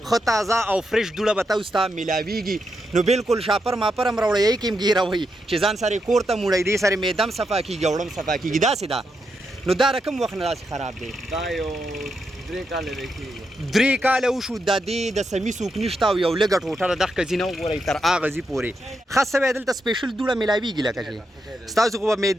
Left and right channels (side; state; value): both; normal; correlation 0.83